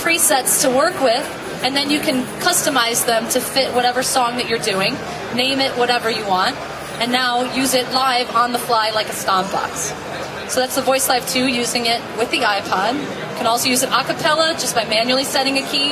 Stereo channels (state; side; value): identical; both; correlation 1.00